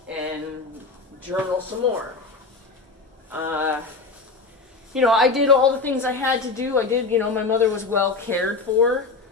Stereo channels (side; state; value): right; quieter; 4.0 dB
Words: and journal some more. I did all the things I had to do. I did, my mother was well cared for.